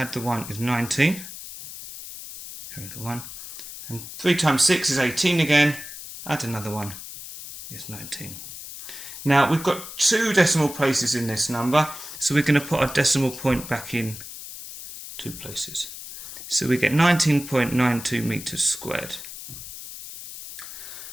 the 1 is 19. Carry the 1. And 3 times 6 is 18 again. Add another 1 is 19. Now we've got 2 decimal places in this number, so we're going to put our decimal point back in 2 places. So we get 19.92 meters squared.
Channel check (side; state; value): left; noise; hiss, 12 dB below the sound